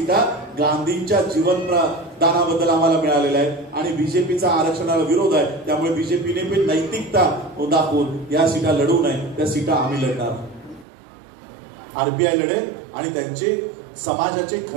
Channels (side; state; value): left; drops out; at 10.9 s